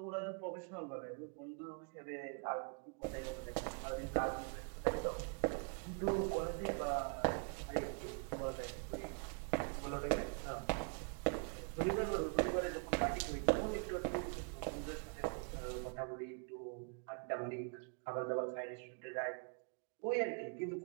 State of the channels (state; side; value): quieter; left; 38.1 dB